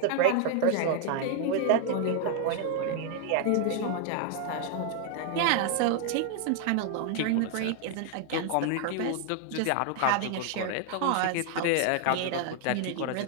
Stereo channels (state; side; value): different; both; correlation 0.00